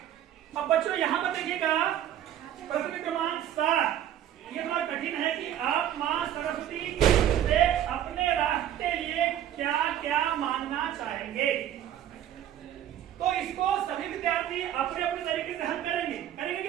अब बच्चों यहाँ पर देखिएगा प्रश्न क्रमांक 7, ये बड़ा कठिन है कि आप माँ सरस्वती से अपने राष्ट्र के लिए क्या क्या मांगना चाहेंगे। तो इसको सभी विद्यार्थी अपने अपने तरीके से हल करेंगे कि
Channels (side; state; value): left; quieter; 11.1 dB